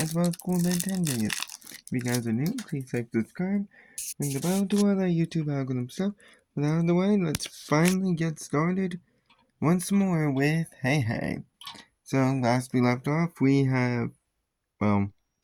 as well as cool Ben 10 videos. If you guys are new, please like, subscribe, ring the bell, do all that YouTube algorithm stuff. But out of the way, let's finally get started once more with Hey Hey. So last we left off, we have, well,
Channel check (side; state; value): both; identical; correlation 1.00